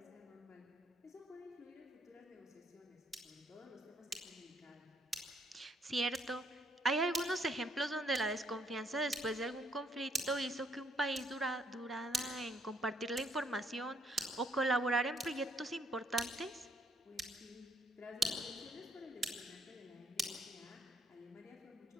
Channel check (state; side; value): normal; both; correlation 0.69